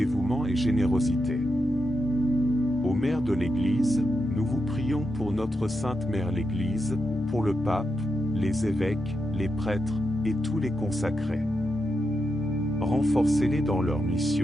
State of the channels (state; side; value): normal; both; correlation 0.85